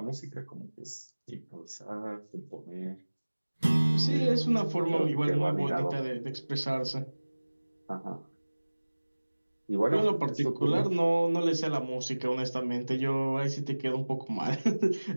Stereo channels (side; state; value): both; inverted; correlation -1.00